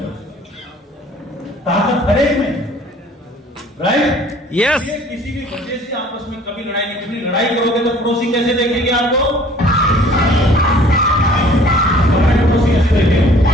ताकत हर एक में, राइट? यस। किसी भी वजह से आपस में कभी लड़ाई नहीं करनी। लड़ाई करोगे तो पड़ोसी कैसे देखेंगे आपको? पड़ोसी कैसे देखेंगे?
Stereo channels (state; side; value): normal; both; correlation 0.53